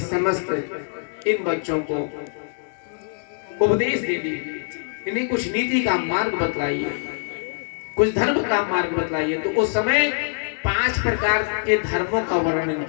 समस्त इन बच्चों को उपदेश दे दीजिए, इन्हें कुछ नीति का मार्ग बतलाइए, कुछ धर्म का मार्ग बतलाइए। तो उस समय 5 प्रकार के धर्मों का वर्णन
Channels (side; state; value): right; silent; 63 dB below the other